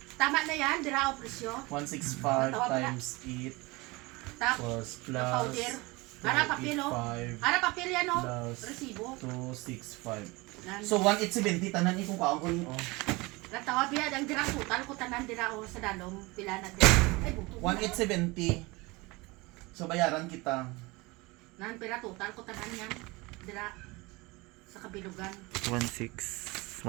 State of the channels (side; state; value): left; quieter; 23.8 dB